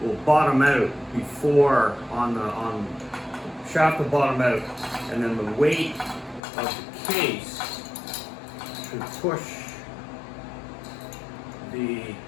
will bottom out before shaft will bottom out, and then the weight of the case should push the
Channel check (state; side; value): drops out; right; at 6.4 s